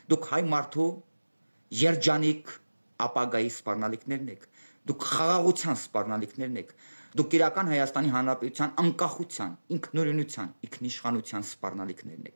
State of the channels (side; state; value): both; inverted; correlation -1.00